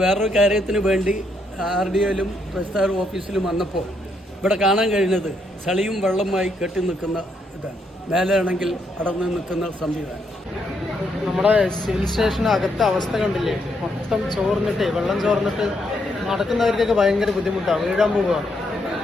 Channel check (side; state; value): both; normal; correlation 0.76